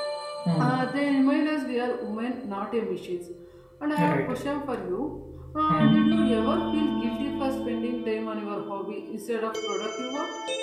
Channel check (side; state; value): both; identical; correlation 1.00